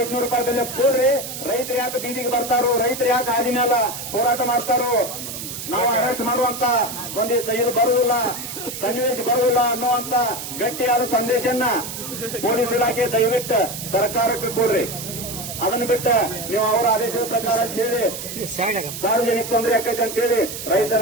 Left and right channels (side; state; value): right; noise; hiss, 8 dB below the sound